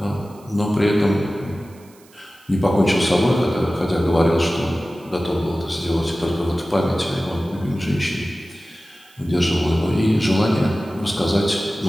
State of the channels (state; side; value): noise; right; hiss, 28 dB below the sound